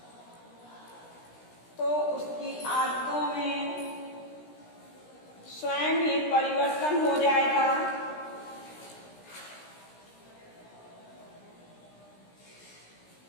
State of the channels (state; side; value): late; right; 17 ms